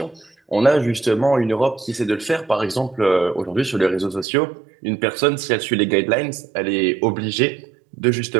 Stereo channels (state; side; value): drops out; left; at 4.2 s